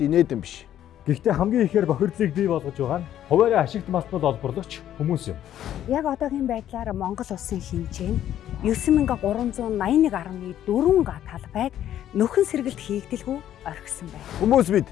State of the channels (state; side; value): quieter; right; 11.4 dB